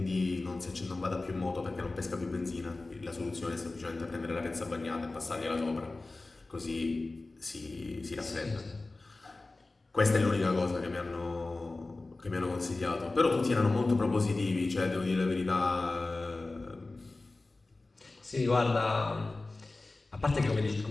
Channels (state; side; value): quieter; right; 3.2 dB